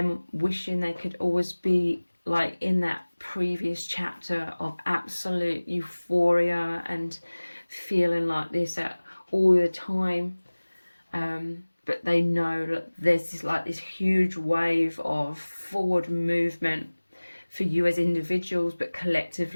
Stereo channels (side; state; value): both; inverted; correlation -1.00